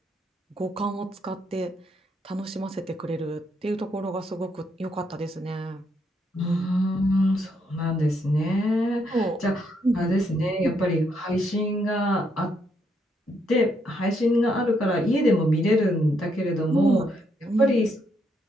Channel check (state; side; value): normal; both; correlation 0.75